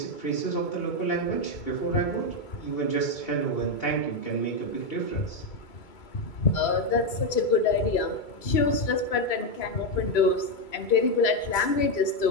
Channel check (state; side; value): late; right; 2.3 ms